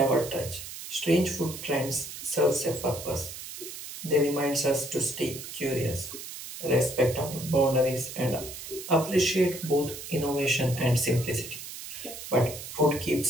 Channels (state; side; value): noise; right; hiss, 10 dB below the sound